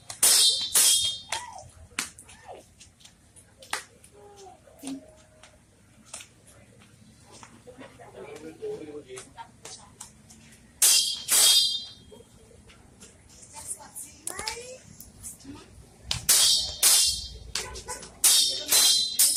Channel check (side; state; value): both; identical; correlation 1.00